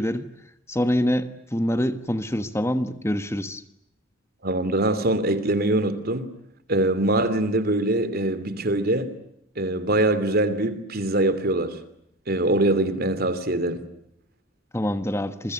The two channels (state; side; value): normal; both; correlation 0.34